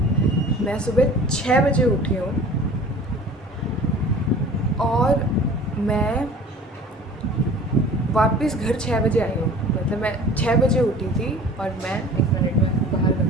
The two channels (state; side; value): normal; both; correlation 0.44